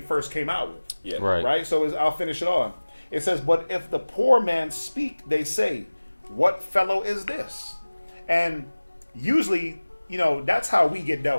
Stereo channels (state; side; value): inverted; both; correlation -1.00